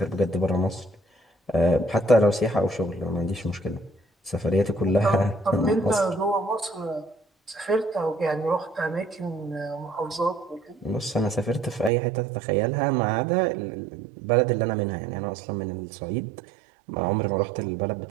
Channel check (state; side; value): drops out; left; at 11.9 s